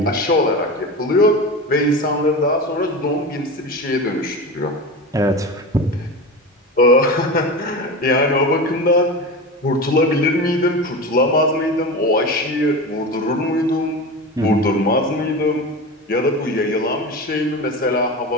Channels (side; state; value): both; normal; correlation 0.26